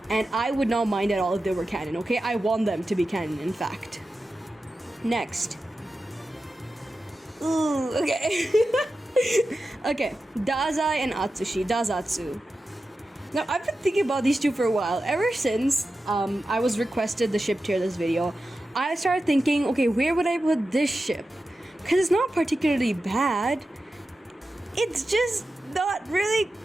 and I would not mind at all if they were canon, okay? I want them to be canon, in fact. Next. Ooh, okay. Okay, Dazai and Atsushi, Dazatsu. Now, I've been thinking about these two for a while. Ever since I was requested the ship tier this video, I started thinking, okay, where would I put this ship? Because it's not particularly bad. It's just not really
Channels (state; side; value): normal; both; correlation 0.92